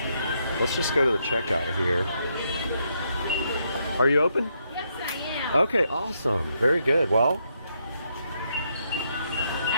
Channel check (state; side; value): inverted; both; correlation -0.77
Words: let's just go to the checkout here. Are you open? Yes, I am. Okay, awesome. Very good. Well,